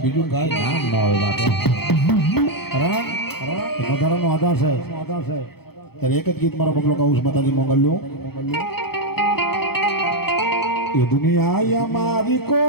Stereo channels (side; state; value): right; late; 0.96 ms